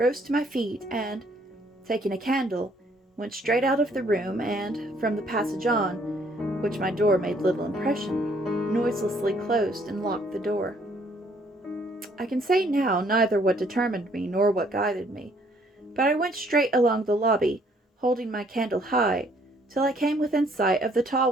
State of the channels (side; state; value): both; normal; correlation 0.64